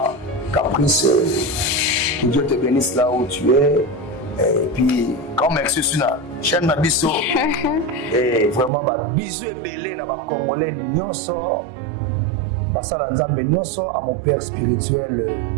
Caprice. Que Dieu te bénisse là où tu es. Et puis, grand merci sur la chaîne Nabiso. Et vraiment, bisous et belé dans ma Congolais, Nyonso. basala nzambe nyonso, à mon père spirituel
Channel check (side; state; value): left; drops out; at 8.7 s